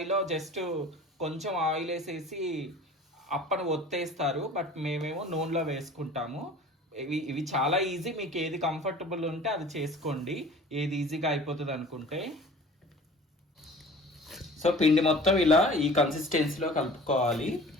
జస్ట్ కొంచెం ఆయిల్ వేసేసి అప్పను ఒత్తేస్తారు, బట్ మేమేమో నూనెలో వేసుకుంటాము. ఇవి చాలా ఈజీ, మీకు ఏది కంఫర్టబుల్ ఉంటే అది చేసుకోండి, ఏది ఈజీగా అయిపోతుంది అనుకుంటే. సో పిండి మొత్తం ఇలా ఈ కన్సిస్టెన్సీలో కలుపుకోవాలి.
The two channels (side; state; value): both; normal; correlation 0.44